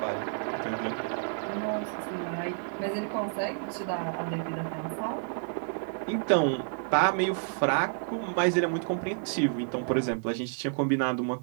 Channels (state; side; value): silent; left; digital silence